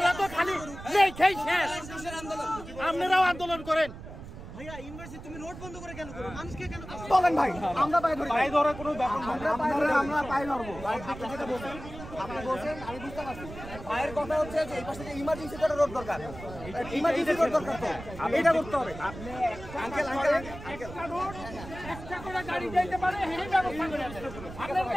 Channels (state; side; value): noise; right; rumble, 13 dB below the sound